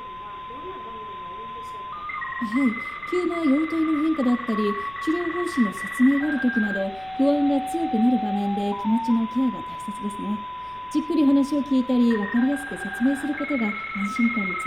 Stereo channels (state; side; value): noise; left; rumble, 24 dB below the sound